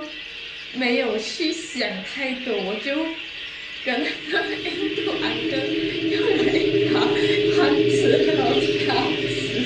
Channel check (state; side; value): identical; both; correlation 1.00